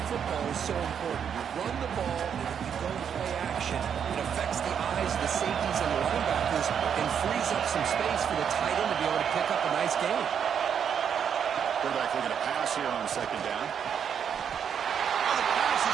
football is so important. You run the ball, and if you go play action, it affects the eyes of the safeties and the linebackers and frees up some space for the tight end to be able to pick up a nice gain. Quarterback looking to pass here on second down. Oh, the pass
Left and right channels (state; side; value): quieter; left; 7.9 dB